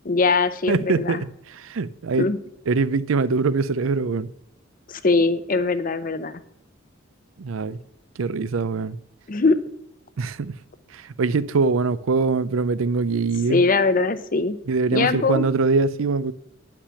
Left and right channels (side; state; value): both; normal; correlation 0.15